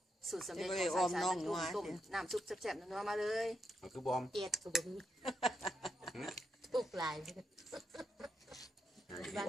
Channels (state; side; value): normal; both; correlation 0.82